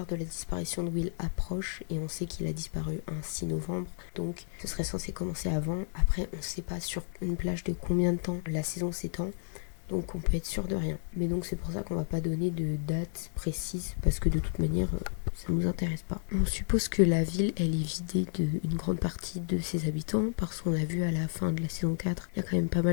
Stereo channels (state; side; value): silent; right; 57 dB below the other